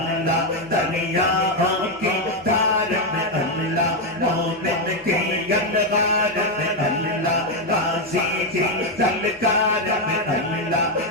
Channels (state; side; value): normal; both; correlation 0.04